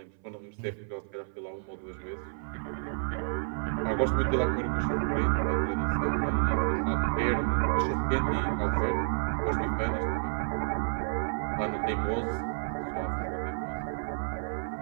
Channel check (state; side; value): silent; left; 58 dB below the other